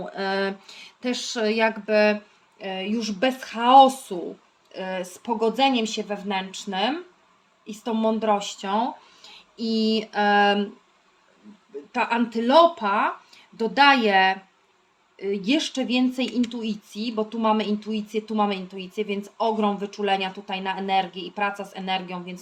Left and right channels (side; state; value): both; identical; correlation 1.00